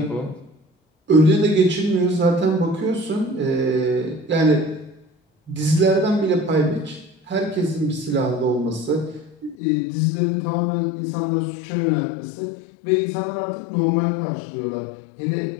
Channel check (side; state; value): right; drops out; at 9.6 s